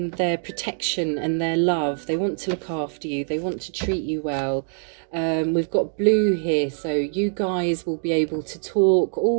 their protection and their love. They want to look after you. They want to treat you well. We've got blue here, so you guys will be able to talk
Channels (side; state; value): left; silent; digital silence